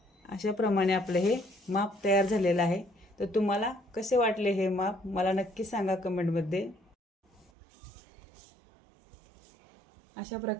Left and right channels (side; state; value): left; drops out; at 7.5 s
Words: अशा प्रमाणे आपलं हे माप तयार झालेलं आहे. तर तुम्हाला कसे वाटले हे माप मला नक्की सांगा कमेंटमध्ये. अशा